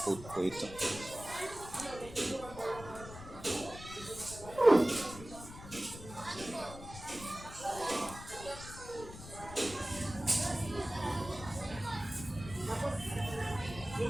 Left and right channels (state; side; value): noise; left; rumble, 13 dB below the sound